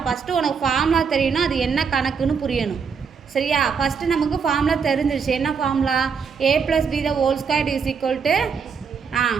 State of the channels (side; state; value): left; quieter; 6.0 dB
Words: ஃபஸ்ட்டு உனக்கு ஃபார்முலா தெரியணும், அது என்ன கணக்குன்னு புரியணும். சரியா? ஃபஸ்ட்டு நமக்கு ஃபார்முலா தெரிஞ்சிருச்சு. என்ன ஃபார்முலா? a + b ²